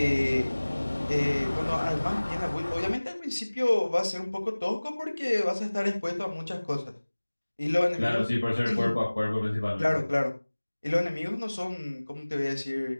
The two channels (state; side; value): inverted; both; correlation -1.00